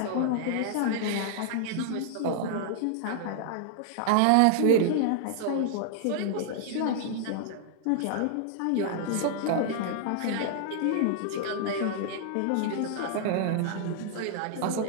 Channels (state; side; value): different; both; correlation -0.01